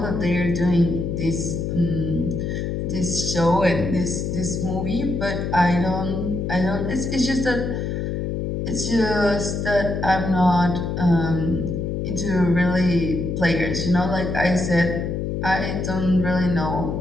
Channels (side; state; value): left; noise; hum, 2 dB below the sound